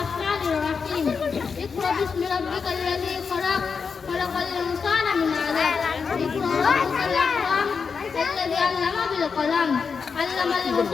الرحيم اقرأ باسم ربك الذي خلق خلق الإنسان من علق اقرأ ربك الأكرم الذي علم بالقلم علم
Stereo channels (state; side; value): quieter; right; 5.6 dB